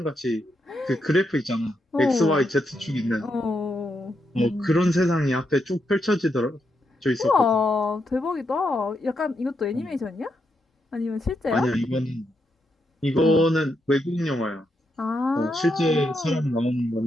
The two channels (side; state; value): both; normal; correlation 0.82